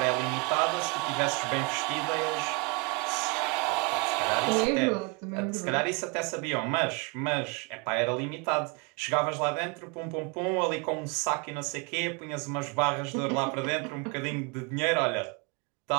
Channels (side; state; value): left; quieter; 30.9 dB